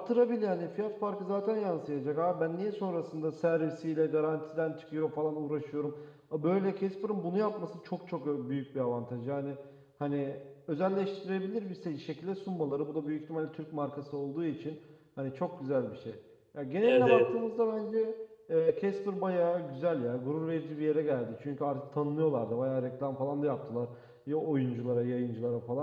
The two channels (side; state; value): both; identical; correlation 1.00